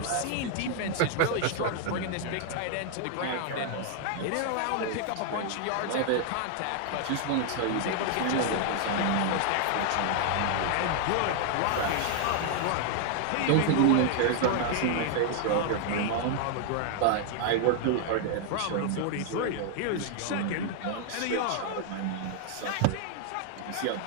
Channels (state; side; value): different; both; correlation 0.00